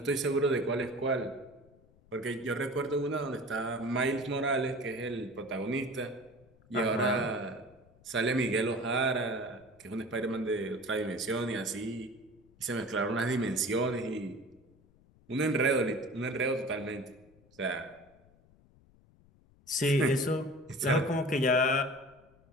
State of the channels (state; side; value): noise; left; rumble, 29 dB below the sound